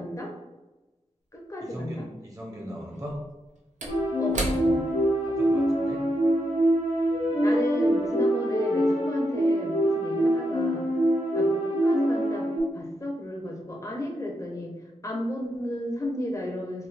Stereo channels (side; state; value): both; normal; correlation 0.82